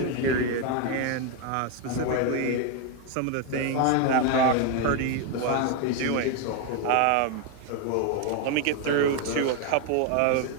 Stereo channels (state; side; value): different; both; correlation 0.01